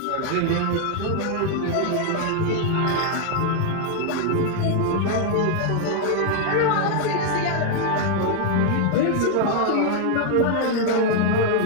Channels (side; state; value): both; different; correlation 0.00